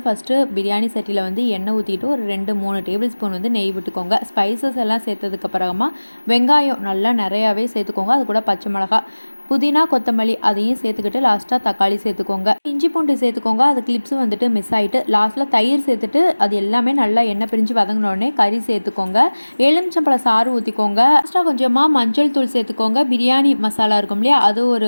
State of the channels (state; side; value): inverted; both; correlation -1.00